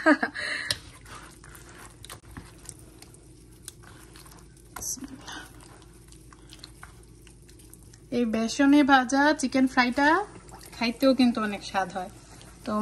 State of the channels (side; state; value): both; identical; correlation 1.00